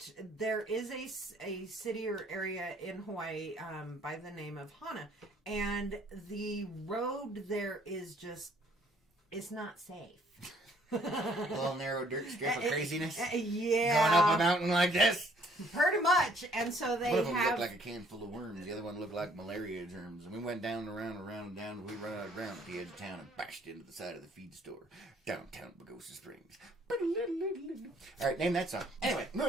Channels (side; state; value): both; normal; correlation 0.62